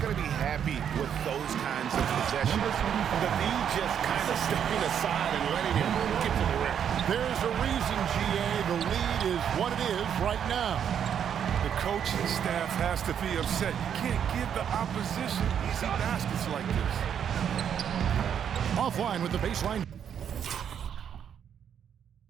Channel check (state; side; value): quieter; left; 8.6 dB